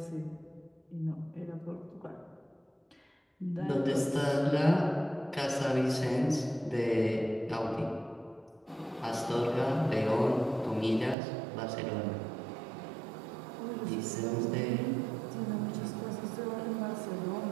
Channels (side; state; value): left; drops out; at 11.2 s